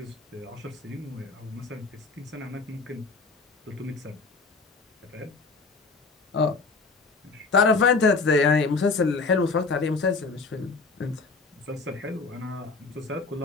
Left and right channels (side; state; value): right; quieter; 4.1 dB